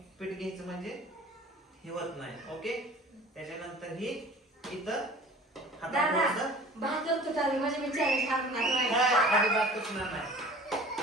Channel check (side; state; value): both; normal; correlation 0.44